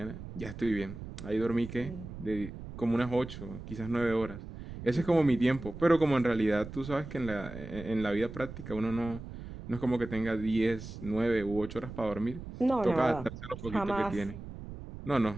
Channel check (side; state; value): right; noise; rumble, 11 dB below the sound